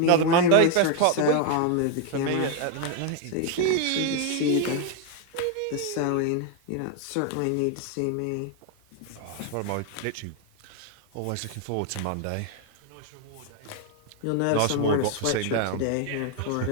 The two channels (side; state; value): both; different; correlation 0.01